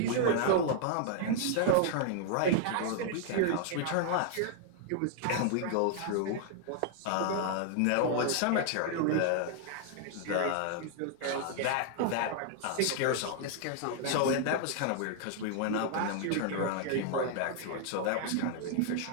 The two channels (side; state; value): both; different; correlation -0.01